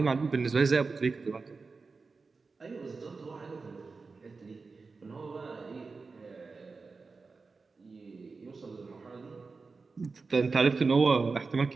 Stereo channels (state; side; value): quieter; left; 4.3 dB